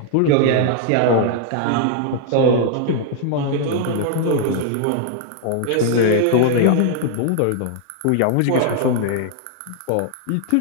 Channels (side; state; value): both; different; correlation 0.00